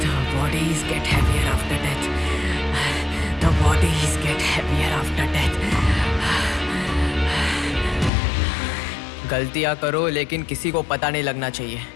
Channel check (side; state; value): right; drops out; at 8.1 s